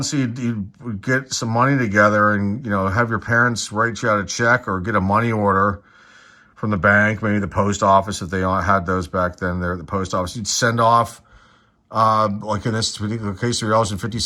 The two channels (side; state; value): both; identical; correlation 1.00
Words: so you'd get some money together and, have your parents write you out a check or get a money order from the bank, maybe the post office, if they had those back then. They're the post office. You'd send off, like in this particular case,